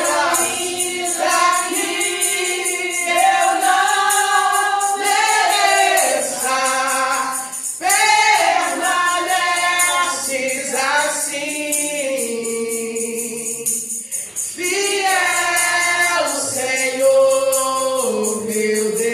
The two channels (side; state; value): both; identical; correlation 1.00